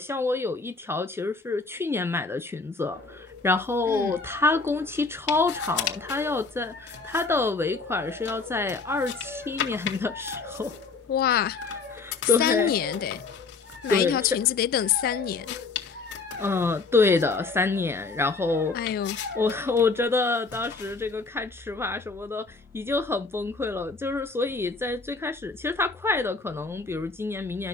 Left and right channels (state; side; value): quieter; right; 4.2 dB